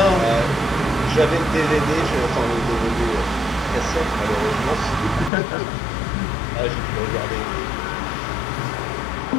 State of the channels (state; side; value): drops out; right; at 5.3 s